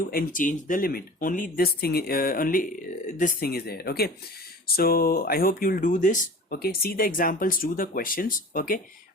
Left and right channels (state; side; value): normal; both; correlation 0.39